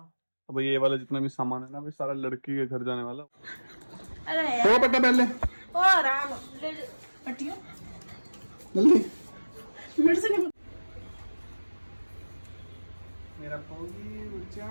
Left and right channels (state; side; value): inverted; both; correlation -1.00